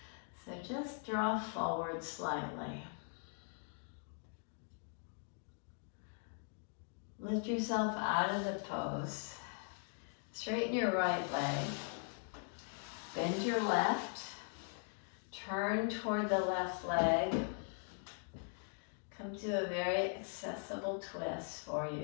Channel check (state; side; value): silent; right; 51 dB below the other